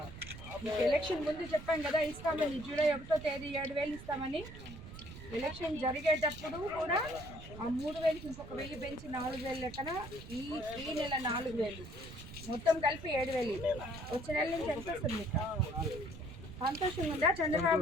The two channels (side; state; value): right; noise; rumble, 13 dB below the sound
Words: ఎలక్షన్ ముందు చెప్పాం కదా, ఇస్తామని. జూలై 1వ తేదీ 7,000 ఇస్తామని. ఎలక్షన్ జరిగేటప్పుడు కూడా ఆ 3,000కి ఇంకొక 1,000 పెంచి 4,000 లెక్కన ఈ నెల 4,000 మొత్తం కలిపి 7,000. వచ్చే నెల నుంచి ఎంత వస్తుంది? సంతోషంగా ఉందా